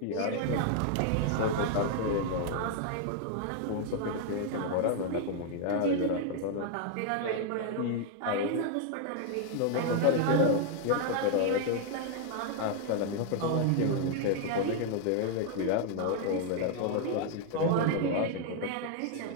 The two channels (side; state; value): both; different; correlation 0.00